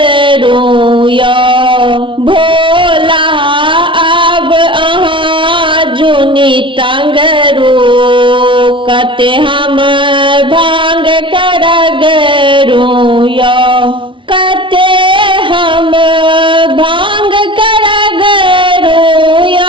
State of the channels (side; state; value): left; late; 0.25 ms